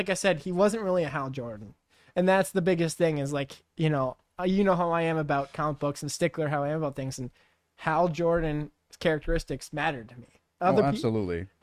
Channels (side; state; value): both; identical; correlation 1.00